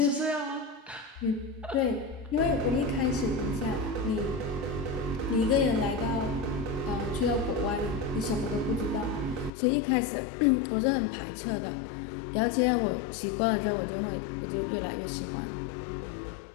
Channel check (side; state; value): right; drops out; at 9.5 s